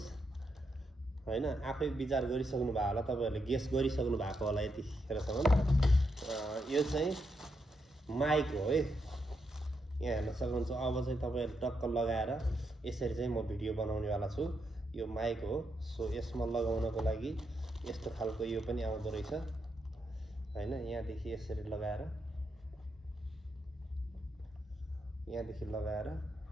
हैन। आफै विचार गरिसक्नु भएको होला, तपाईहरुले गेस गरिसक्नु भएको होला यतिखेरसम्म। यो चाहिँ माइक हो है, यहाँ हेर्न सक्नुहुन्छ। अब चाहिँ तपाईहरुले टक्क लगाएर यसरी चाहिँ म भिडियो बनाउनेवाला छु। यो माइक हो। सो यसमा लगाउनको लागि यस्तो खालको यो पनि आउँदो रहेछ हैन। यहाँदेखि यसरी लगाएर, यहाँदेखि लगाएर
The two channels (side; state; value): both; normal; correlation 0.82